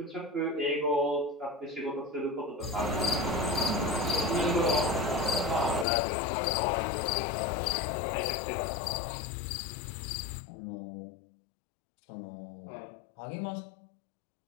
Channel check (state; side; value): drops out; right; at 5.9 s